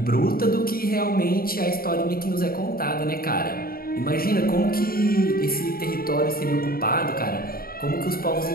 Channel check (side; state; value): right; late; 0.43 ms